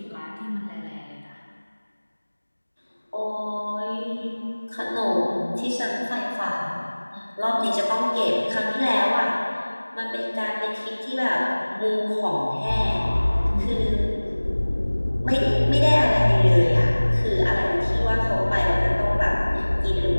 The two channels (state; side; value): inverted; both; correlation -1.00